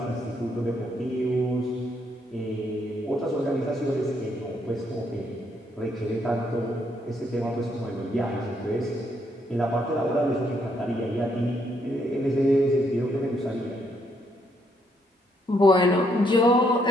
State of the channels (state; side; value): normal; both; correlation 0.73